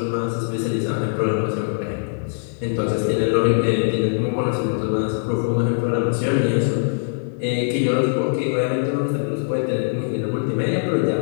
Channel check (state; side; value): silent; right; 58 dB below the other